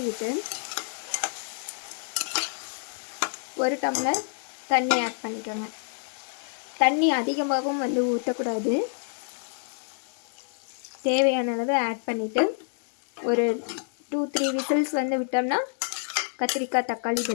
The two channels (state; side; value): silent; right; digital silence